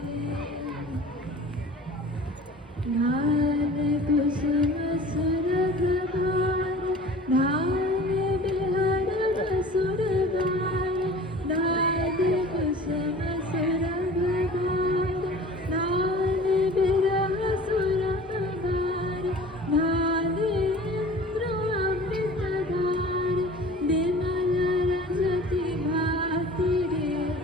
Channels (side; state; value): both; normal; correlation 0.42